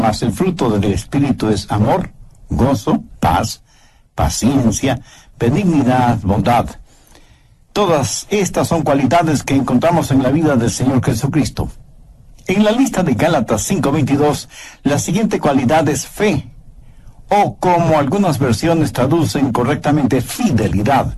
el fruto del Espíritu es amor, gozo, paz, paciencia, benignidad, bondad. Todas estas son cualidades que encontramos en la vida del Señor Jesucristo. En la lista de Gálatas 5:22, la siguiente cualidad es fe, o como algunas versiones traducen correctamente, fidelidad.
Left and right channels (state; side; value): identical; both; correlation 1.00